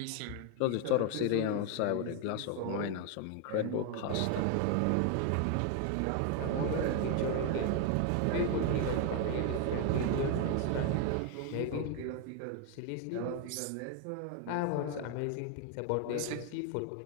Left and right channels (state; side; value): different; both; correlation 0.01